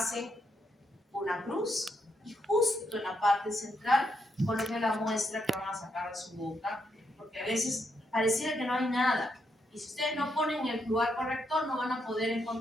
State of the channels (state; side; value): normal; both; correlation 0.79